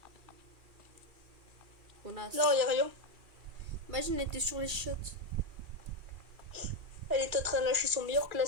Connasse. Non, y a rien. Imagine, elle était sur les shots. Elle est en train de lâcher son meilleur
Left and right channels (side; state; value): left; late; 2.4 ms